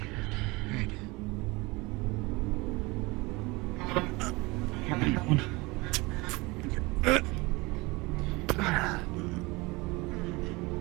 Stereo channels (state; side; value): quieter; left; 24.0 dB